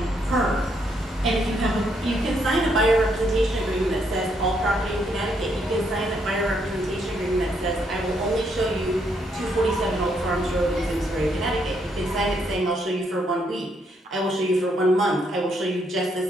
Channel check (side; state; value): both; normal; correlation 0.74